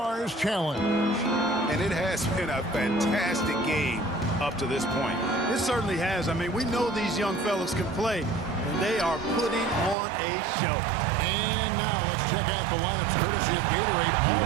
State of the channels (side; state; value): left; drops out; at 10.0 s